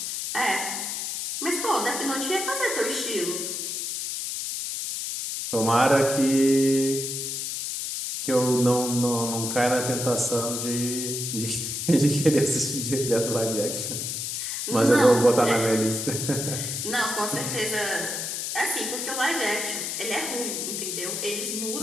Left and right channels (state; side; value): noise; left; hiss, 3 dB below the sound